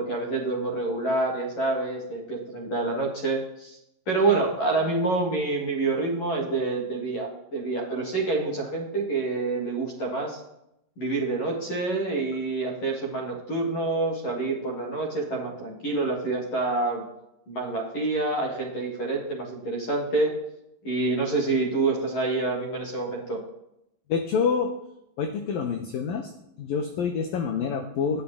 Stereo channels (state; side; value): late; right; 11 ms